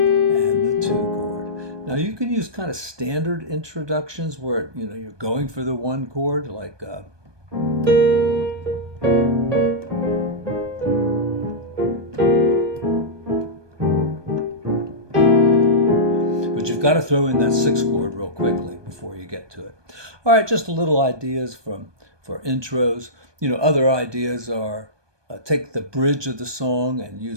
2 chord. Now you can use kind of standard introductions where you're going for the 1 chord, like but you've got to throw in that 6 chord real quickly before you get to it. All right, just a little ideas for intros. Other ideas are take the bridge of the song and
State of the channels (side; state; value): left; late; 1.2 ms